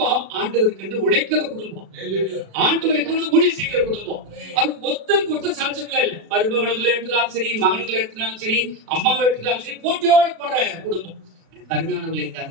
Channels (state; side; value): late; left; 36 ms